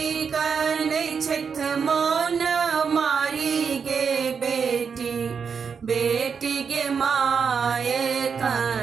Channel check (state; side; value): quieter; left; 6.2 dB